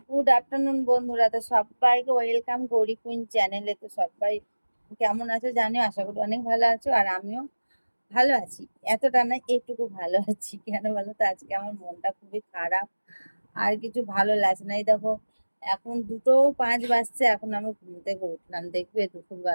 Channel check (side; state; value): both; inverted; correlation -1.00